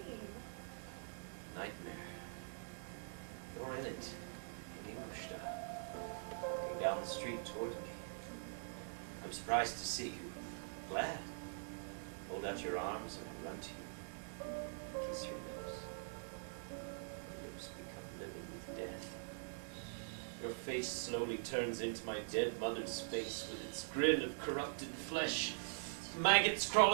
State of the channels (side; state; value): left; silent; digital silence